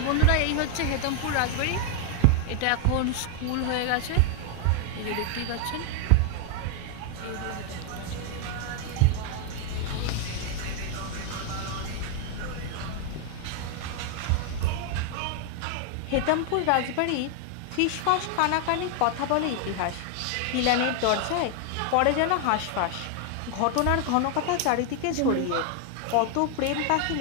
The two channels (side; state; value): both; different; correlation 0.00